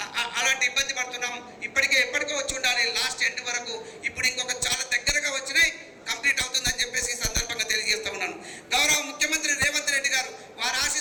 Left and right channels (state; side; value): identical; both; correlation 1.00